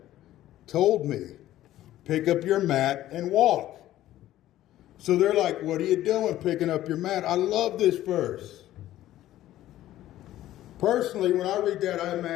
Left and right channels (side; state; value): right; quieter; 13.9 dB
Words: told me, pick up your mat and walk. So they're like, what are you doing picking up your mat? I love this verse. Personally, when I read that, I